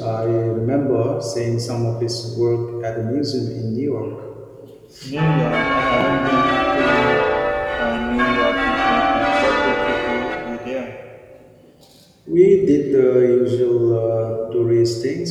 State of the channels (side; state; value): both; identical; correlation 1.00